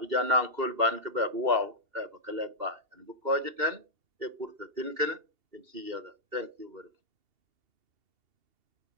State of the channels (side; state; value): left; late; 2.7 ms